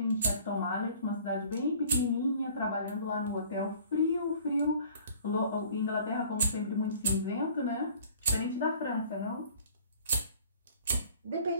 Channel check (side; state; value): both; inverted; correlation -0.51